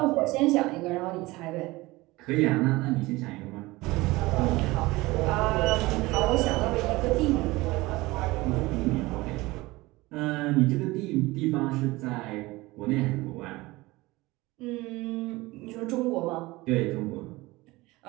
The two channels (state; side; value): quieter; left; 20.7 dB